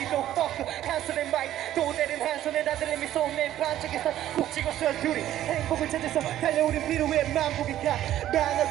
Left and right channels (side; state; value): left; quieter; 12.6 dB